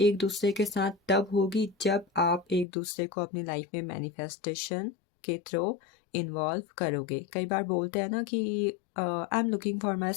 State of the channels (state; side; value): drops out; right; at 2.7 s